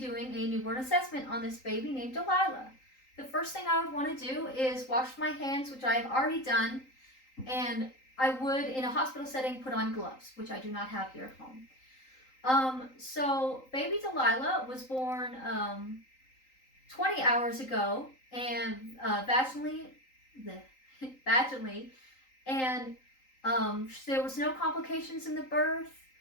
a newborn assessment on this baby named Delilah. The first thing I would want to do is wash my hands, which I have already done, and I would, in a hospital setting, put on gloves, which I do not have here at home. So baby Delilah was born 20 hours ago, and vaginally, vaginally, and there was no complications in the birth.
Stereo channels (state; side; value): late; right; 3.8 ms